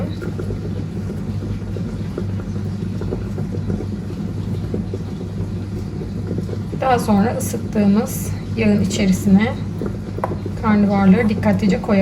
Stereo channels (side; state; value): both; identical; correlation 1.00